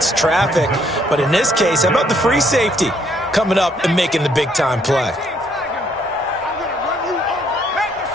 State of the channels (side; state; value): both; normal; correlation 0.68